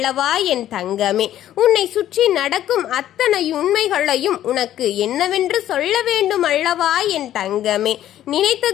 என் தங்கமே. உன்னை சுற்றி நடக்கும் அத்தனை உண்மைகளையும் உனக்கு என்னவென்று சொல்ல வேண்டும் அல்லவா என் தங்கமே.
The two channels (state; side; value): quieter; right; 12.1 dB